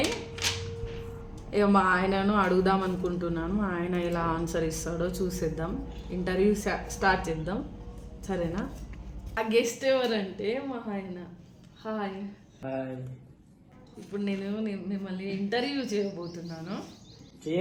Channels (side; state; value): both; identical; correlation 1.00